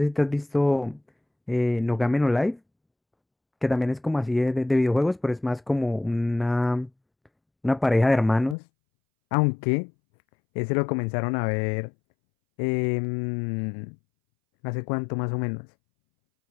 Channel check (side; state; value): right; drops out; at 8.6 s